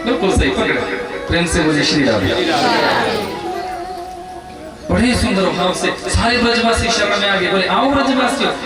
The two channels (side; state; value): both; identical; correlation 1.00